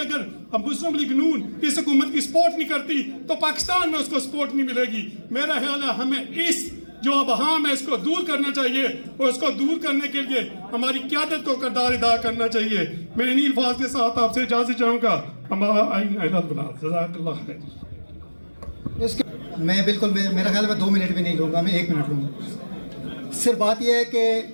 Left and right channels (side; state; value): both; inverted; correlation -1.00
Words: हम मुस्लिम लीग नून इस हुकूमत की सपोर्ट नहीं करती तो पाकिस्तान में उसको सपोर्ट नहीं मिलेगी। मेरा ख्याल है हमें इस जो अबहाम है इसको दूर करना चाहिए, और इसको दूर करने के लिए हमारी क़यादत को किरदार अदा करना चाहिए। मैं इन्हीं अल्फाज के साथ आपसे इजाज़त चाहूँगा। मैं बिल्कुल मेरा ख्याल में 2 मिनट भी नहीं लूँगा, मैं 1 मिनट लूँगा। सिर्फ बात यह है कि